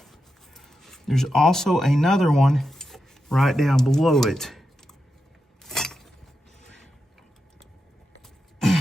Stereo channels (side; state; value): both; normal; correlation 0.88